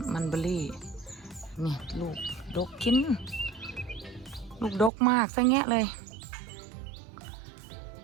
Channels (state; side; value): drops out; left; at 4.9 s